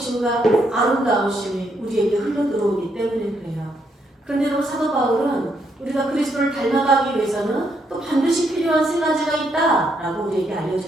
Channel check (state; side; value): normal; both; correlation 0.76